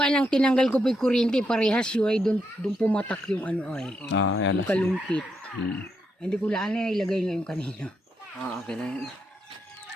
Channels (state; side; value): normal; both; correlation 0.80